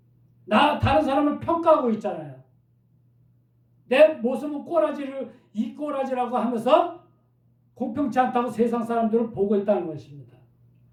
다른 사람을 평가하고 있잖아요. 내 모습은 이 꼬라지라고 하면서 공평치 않다고 세상 사람들을 보고 있다는 것입니다.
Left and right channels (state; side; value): identical; both; correlation 1.00